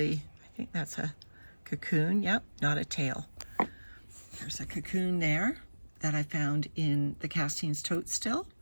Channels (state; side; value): inverted; both; correlation -1.00